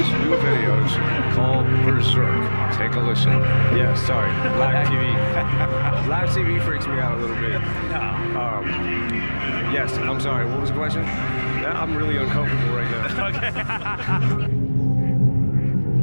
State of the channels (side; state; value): both; inverted; correlation -1.00